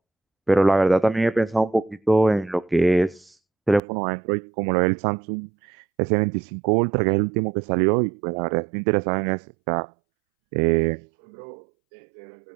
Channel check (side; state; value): left; drops out; at 3.8 s